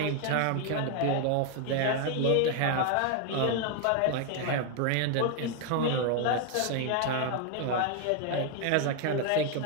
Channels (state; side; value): different; both; correlation 0.01